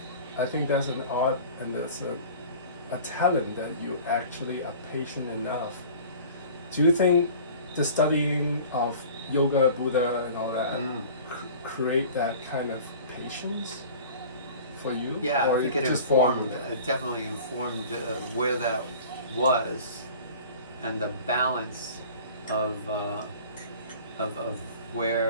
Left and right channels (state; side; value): inverted; both; correlation -0.43